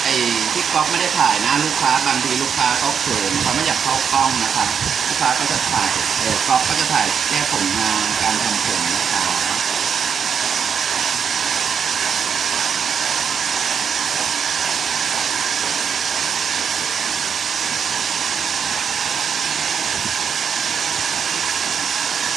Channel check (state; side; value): quieter; left; 7.1 dB